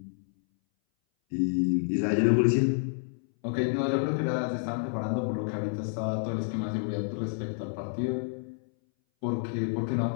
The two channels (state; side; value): silent; right; 58 dB below the other